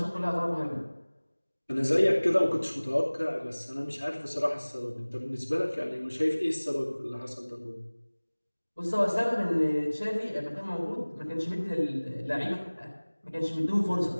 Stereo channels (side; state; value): both; inverted; correlation -1.00